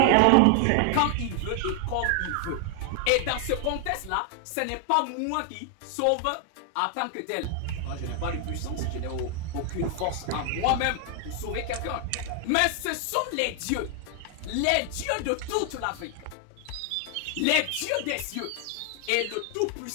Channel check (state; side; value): different; both; correlation 0.00